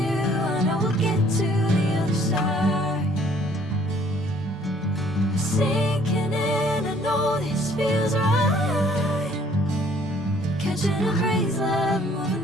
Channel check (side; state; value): both; normal; correlation 0.59